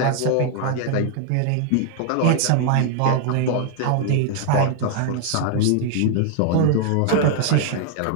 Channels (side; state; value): both; different; correlation 0.00